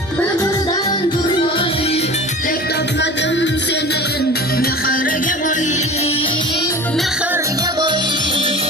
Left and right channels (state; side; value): normal; both; correlation 0.37